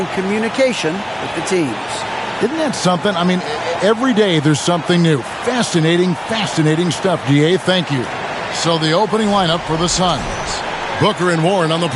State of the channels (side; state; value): both; identical; correlation 1.00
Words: communication with the teams. Isn't that something? I mean, every day there's something new. Fascinating, fascinating stuff, DA. Thank you. So the opening lineup for the Suns. Booker and Warren on the